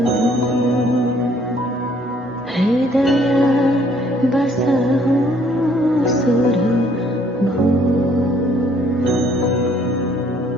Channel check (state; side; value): normal; both; correlation 0.63